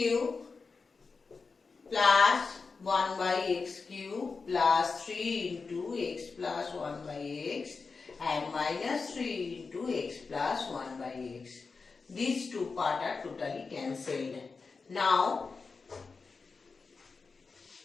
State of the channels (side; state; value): right; quieter; 4.6 dB